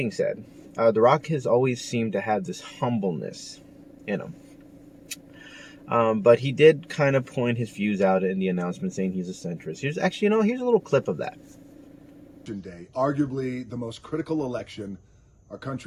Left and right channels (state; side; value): identical; both; correlation 1.00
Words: said, The Rock has always seemed to have this humbleness in him. But he did kind of point his views out in the announcement saying he's a centrist. Here's a little clip of that. Day, arguably the most critical election our